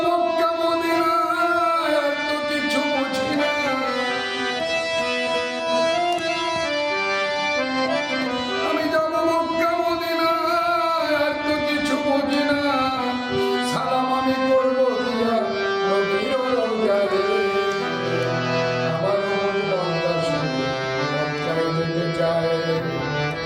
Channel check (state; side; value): identical; both; correlation 1.00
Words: মক্কা মদিনায়, আর তো কিছু বুঝি না। আমি যাব মক্কা মদিনায়, আর তো কিছু বুঝি না। সালাম আমি করবো দিয়া নবীর রওজায়,